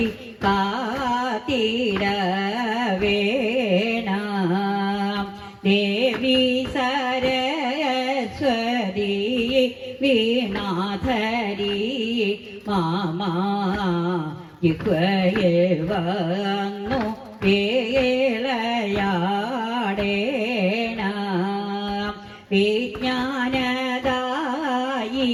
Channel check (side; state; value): both; identical; correlation 1.00